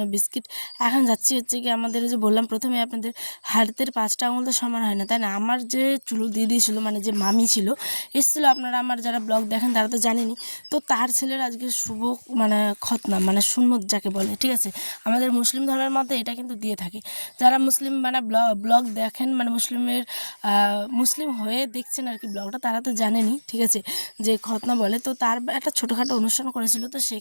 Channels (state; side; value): inverted; both; correlation -1.00